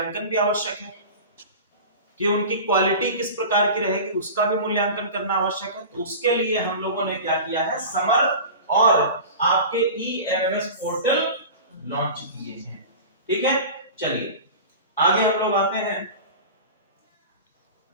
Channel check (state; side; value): inverted; both; correlation -0.34